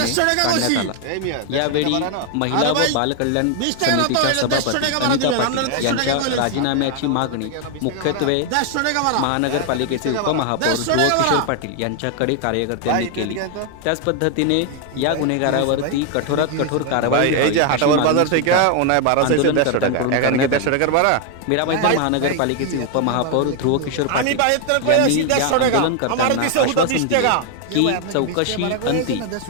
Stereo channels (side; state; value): both; different; correlation 0.00